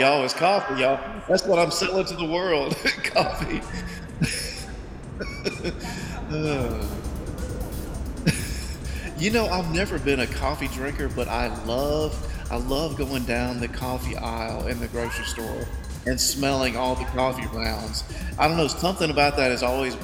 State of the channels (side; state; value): both; identical; correlation 1.00